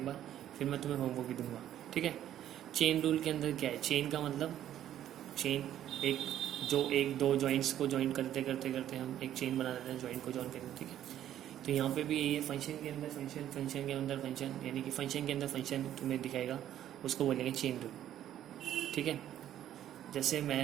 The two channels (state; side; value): quieter; left; 11.5 dB